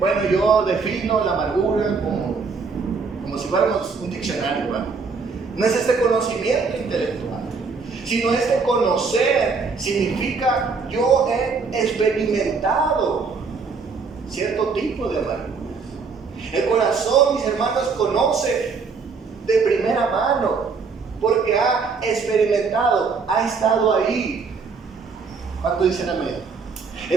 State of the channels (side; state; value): left; quieter; 4.9 dB